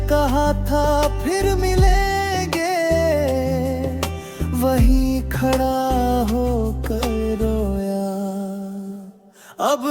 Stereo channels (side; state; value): both; identical; correlation 1.00